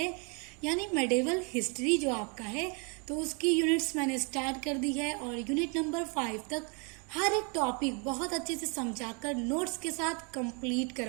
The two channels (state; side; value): quieter; left; 34.7 dB